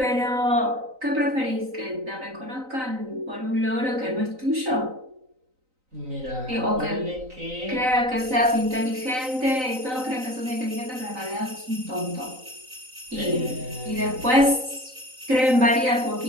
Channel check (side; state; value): left; late; 3.9 ms